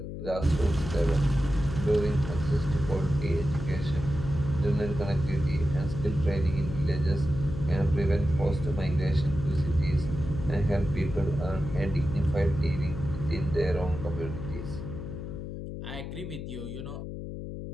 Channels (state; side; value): noise; left; hum, 7 dB below the sound